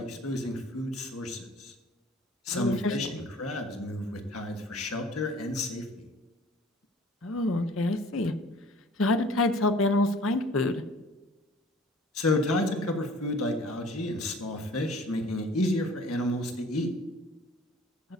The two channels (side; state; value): both; normal; correlation 0.50